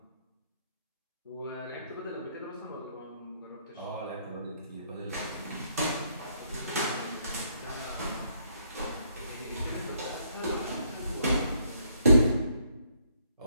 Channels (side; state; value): both; inverted; correlation -0.70